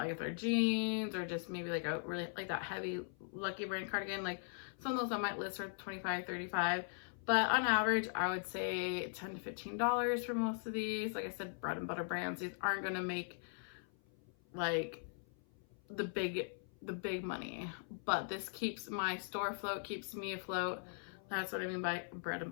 if they're jeans or just maybe like a really like that heavy Lucky brand cardigan, like some of those I might list for $25, $35. But on average, I would say $10 to $15 for most of these. Like I said, bread and butter brands. These aren't gonna make like the big money, but this keeps my store afloat, keeps me afloat. That's what I mean by bread and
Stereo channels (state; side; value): silent; right; 51 dB below the other